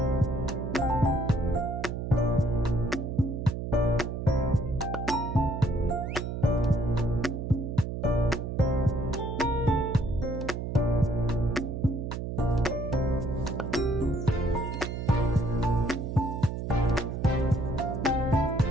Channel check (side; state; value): right; noise; hum, 5 dB below the sound